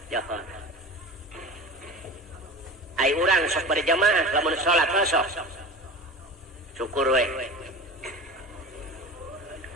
Ai urang sok berjamaah lamun salat sok. Syukur we.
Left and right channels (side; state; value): both; normal; correlation 0.33